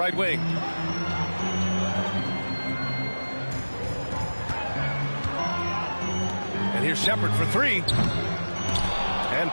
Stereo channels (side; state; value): both; inverted; correlation -1.00